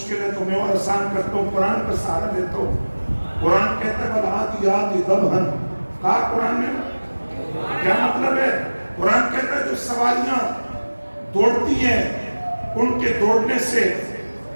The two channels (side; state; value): both; inverted; correlation -1.00